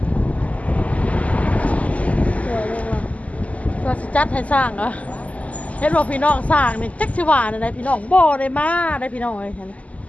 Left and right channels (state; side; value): late; right; 0.071 ms